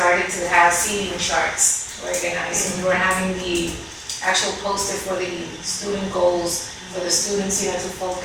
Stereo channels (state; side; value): identical; both; correlation 1.00